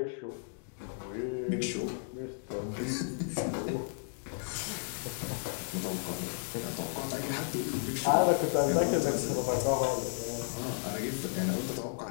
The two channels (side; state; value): right; silent; digital silence